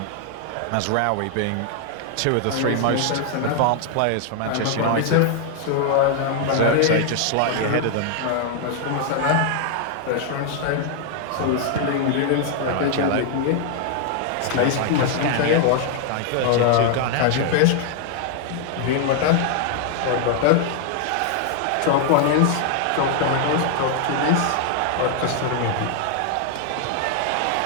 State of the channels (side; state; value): both; different; correlation 0.00